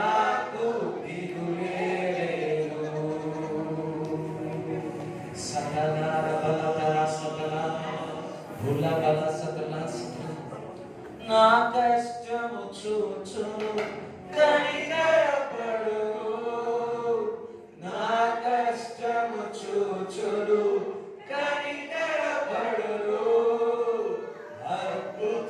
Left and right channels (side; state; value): both; identical; correlation 1.00